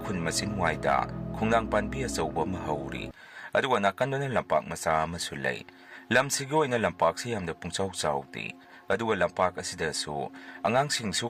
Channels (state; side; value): identical; both; correlation 1.00